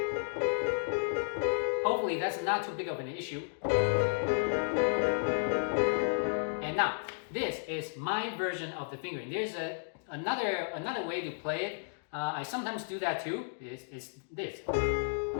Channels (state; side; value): silent; right; digital silence